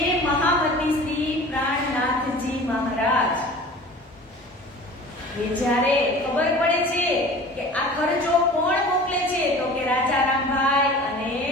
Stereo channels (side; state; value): both; normal; correlation 0.41